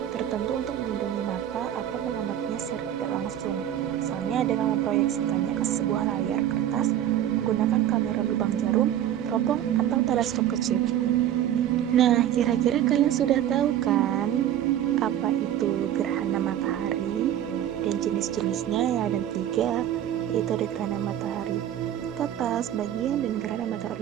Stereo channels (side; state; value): left; quieter; 11.2 dB